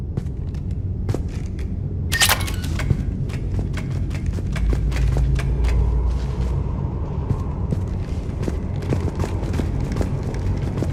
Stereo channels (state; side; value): identical; both; correlation 1.00